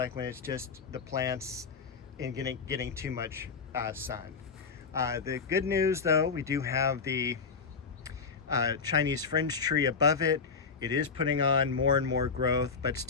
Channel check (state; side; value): quieter; right; 5.3 dB